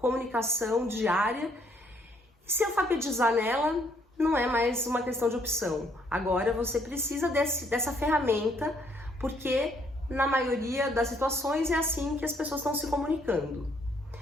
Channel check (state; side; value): normal; both; correlation 0.68